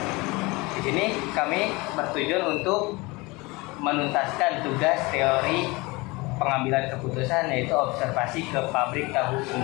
Di sini kami bertujuan untuk menuntaskan tugas teori pengambilan keputusan, yaitu observasi ke pabrik tahu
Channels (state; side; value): quieter; right; 24.1 dB